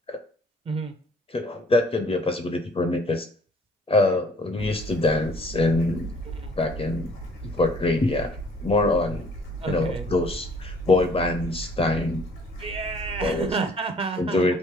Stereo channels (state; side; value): normal; both; correlation 0.57